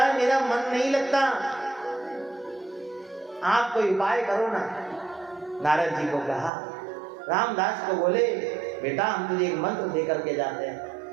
मेरा मन नहीं लगता, आप कोई उपाय करो ना। नारद जी को कहा, रामदास को बोले, बेटा हम तुझे एक मंत्र दे करके जाते हैं,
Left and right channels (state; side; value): drops out; left; at 6.5 s